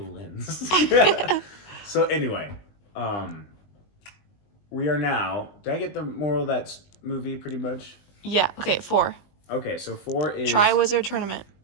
lens. So anyway, we are now. Did I get the moral of that movie pretty much? Yeah. Okay. 4. Okay, so 4 is Triwizard Tournament.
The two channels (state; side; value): late; right; 20 ms